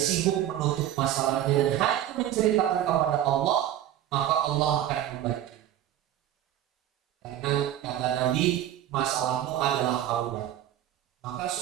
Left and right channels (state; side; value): quieter; left; 11.9 dB